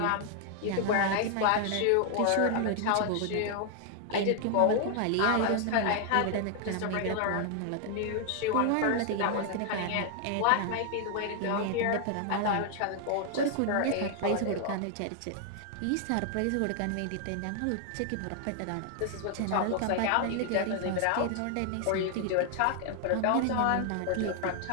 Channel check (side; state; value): both; different; correlation 0.00